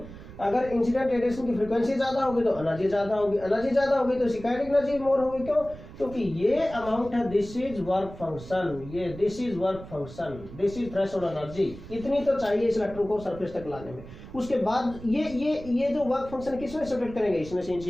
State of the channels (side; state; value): right; noise; rumble, 15 dB below the sound